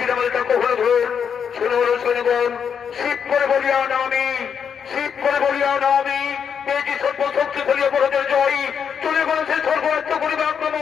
আমাদের তাকে হলে ধর শুনে হলো সৈন্যগণ, শিব করে বলিয়া না আমি, শিব করে বলিয়া না আমি পেয়েছি সর্বশক্তি ফেলিয়া বড়দের জয়। চলে গেল সেই স্বর্গরাজ্য করিবে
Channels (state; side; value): quieter; right; 7.3 dB